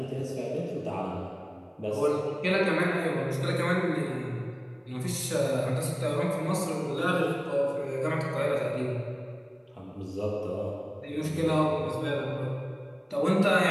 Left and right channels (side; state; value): both; identical; correlation 1.00